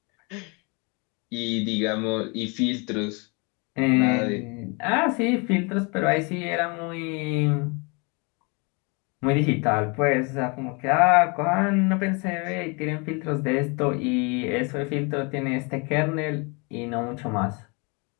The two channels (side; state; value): right; quieter; 30.9 dB